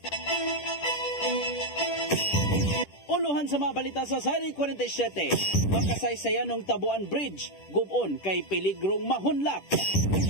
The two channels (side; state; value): right; late; 10 ms